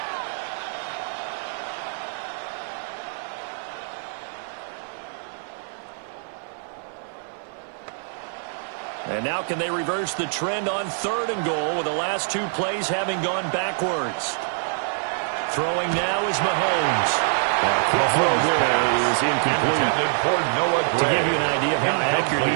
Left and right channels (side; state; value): left; silent; 62 dB below the other